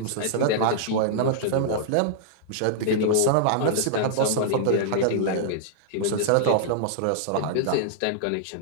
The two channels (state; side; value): different; both; correlation -0.01